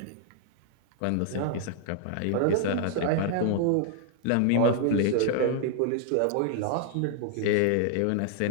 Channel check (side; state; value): both; different; correlation -0.01